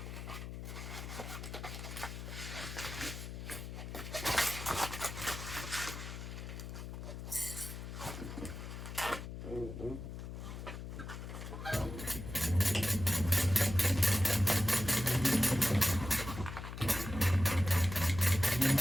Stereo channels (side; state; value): left; noise; hum, 8 dB below the sound